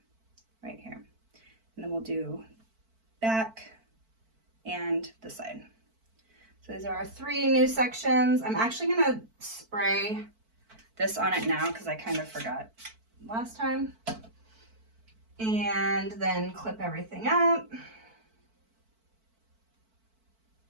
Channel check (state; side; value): late; left; 4.5 ms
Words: right here. And then we'll do back and the side. So these are our three new sections. I'm actually gonna spray this on it now because I kind of forgot last time. And then clip everything up.